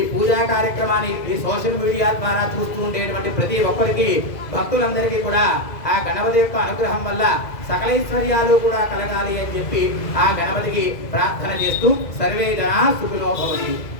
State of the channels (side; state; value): right; late; 2.0 ms